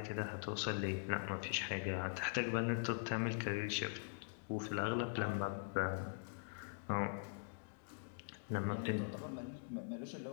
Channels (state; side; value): silent; right; digital silence